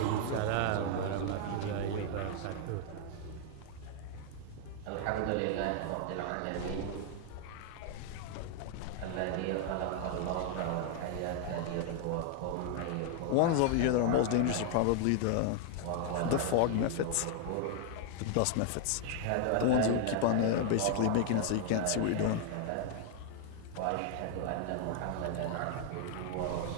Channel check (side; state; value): both; different; correlation 0.00